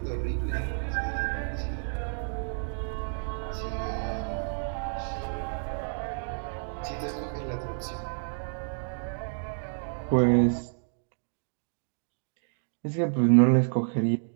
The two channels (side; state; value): left; silent; digital silence